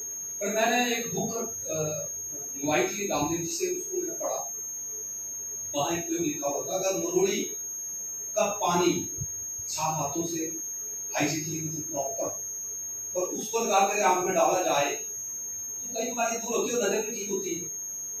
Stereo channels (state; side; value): identical; both; correlation 1.00